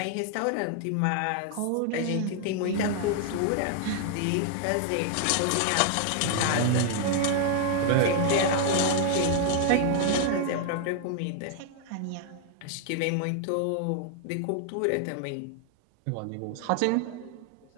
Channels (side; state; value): both; different; correlation 0.00